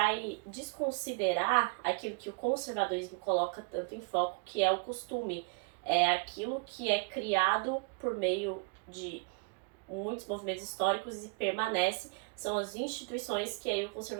desconsiderar aquilo que o conservadorismo coloca tanto em foco, que é o costume. É aquilo que é criado por meio de muitos movimentos históricos e permanece, são as instituições que aí o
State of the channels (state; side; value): quieter; left; 34.7 dB